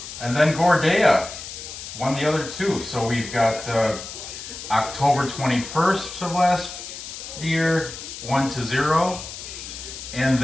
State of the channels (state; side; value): noise; left; hiss, 11 dB below the sound